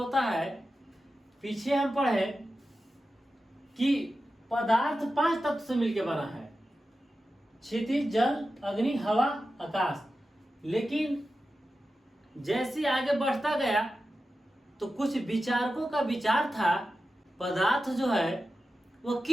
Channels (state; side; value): normal; both; correlation 0.92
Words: है, पीछे हम पढ़े कि पदार्थ 5 तत्व से मिलकर बना है, क्षितिज, जल, अग्नि, हवा, आकाश। लेकिन जैसे आगे बढ़ता गया तो कुछ विचारकों का विचार था पदार्थ जो है वो